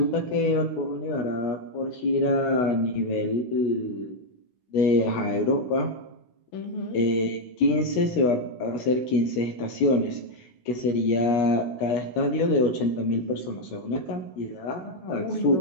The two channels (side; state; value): right; late; 16 ms